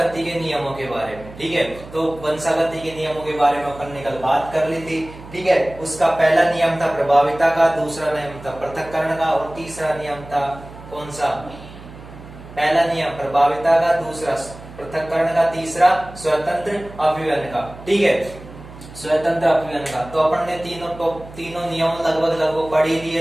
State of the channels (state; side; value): noise; right; hum, 17 dB below the sound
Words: के नियमों के बारे में। ठीक है, तो वंशागति के नियमों के बारे में अपन ने कल बात कर ली थी। ठीक है, उसका पहला नियम था प्रभाविता का, दूसरा नियम था पृथक्करण का और तीसरा नियम था कौन सा? पहला नियम प्रभाविता का, दूसरा पृथक्करण का, तीसरा स्वतंत्र अपव्यय का। ठीक है, स्वतंत्र अपव्यय का तो अपन ने तीनों नियम लगभग पढ़ ही